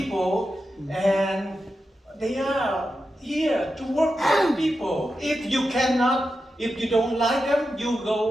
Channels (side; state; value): both; normal; correlation 0.89